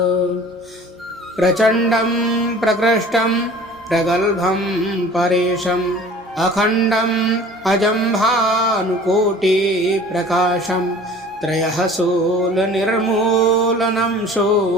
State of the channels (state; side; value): normal; both; correlation 0.46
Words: प्रचंडं प्रकृष्टं प्रगल्भं परेशं अखंडं अजं भानुकोटि प्रकाशं त्रयः शूलनिर्मूलनं